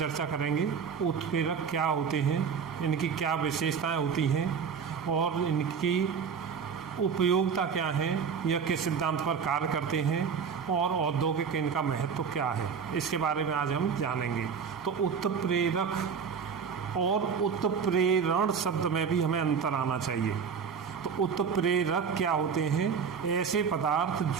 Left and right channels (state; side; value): quieter; left; 6.4 dB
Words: करेंगे। उत्प्रेरक क्या होते हैं, इनकी क्या विशेषताएं होती हैं और इनकी उपयोगिता क्या है, यह किस सिद्धांत पर कार्य करते हैं और औद्योगिक इनका महत्व क्या है, इसके बारे में आज हम जानेंगे। तो उत्प्रेरक और उत्प्रेरण शब्द में भी हमें अंतर आना चाहिए। तो उत्प्रेरक क्या होते हैं? ऐसे पदार्थ